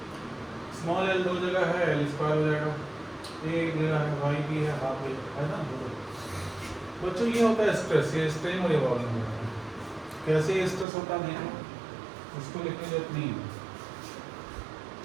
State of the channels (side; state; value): left; drops out; at 10.9 s